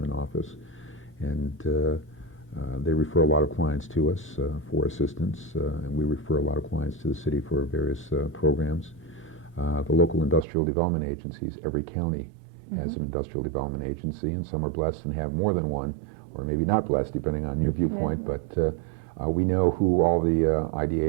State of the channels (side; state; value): left; drops out; at 10.5 s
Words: office, and they refer a lot of clients to us for assistance, and we refer a lot of clients to the city for various programs. The local industrial development agencies, every county has an industrial development agency, and some are blessed and have more than one, or maybe not blessed, depending on your viewpoint, but we know who all the